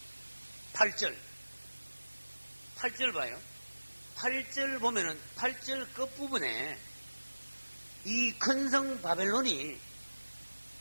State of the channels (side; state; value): both; inverted; correlation -1.00